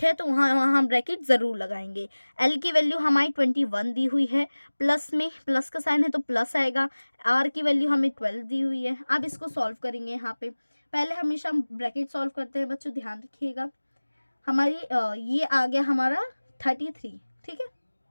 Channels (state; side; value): inverted; both; correlation -1.00